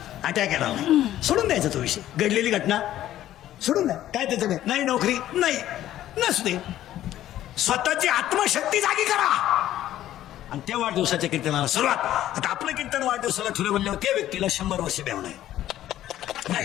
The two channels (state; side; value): quieter; right; 13.0 dB